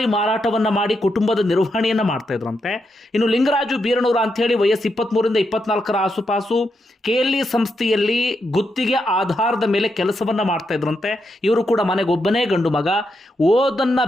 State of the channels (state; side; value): normal; both; correlation 0.83